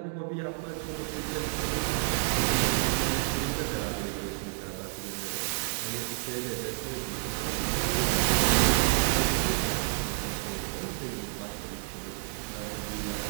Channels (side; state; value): left; silent; digital silence